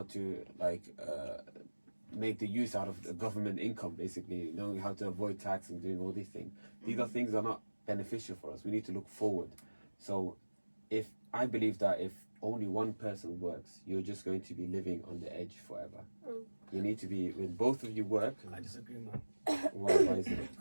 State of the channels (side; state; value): both; inverted; correlation -1.00